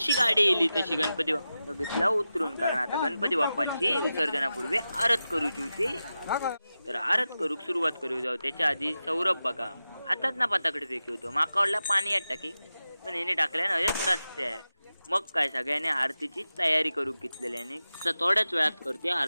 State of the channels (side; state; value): both; inverted; correlation -0.93